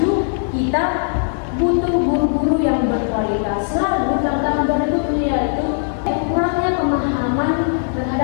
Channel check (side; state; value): right; silent; digital silence